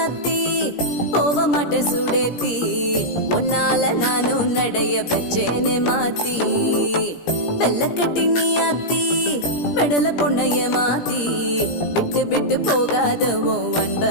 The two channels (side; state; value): right; late; 17 ms